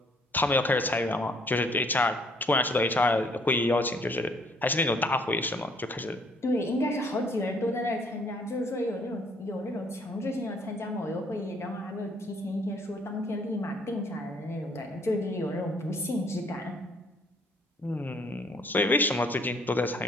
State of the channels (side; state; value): both; normal; correlation 0.63